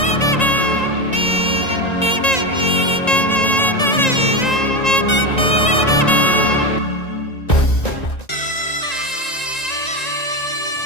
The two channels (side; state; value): right; late; 1.9 ms